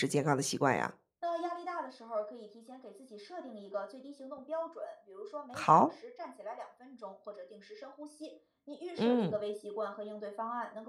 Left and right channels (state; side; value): identical; both; correlation 1.00